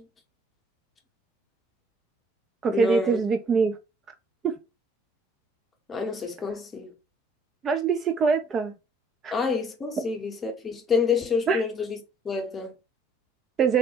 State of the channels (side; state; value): both; normal; correlation 0.61